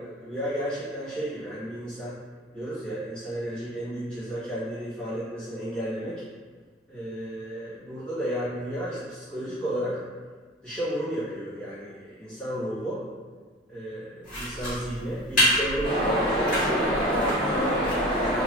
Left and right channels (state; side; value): normal; both; correlation 0.37